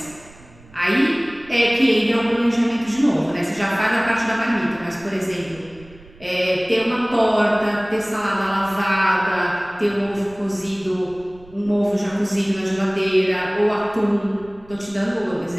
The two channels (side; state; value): right; noise; rumble, 23 dB below the sound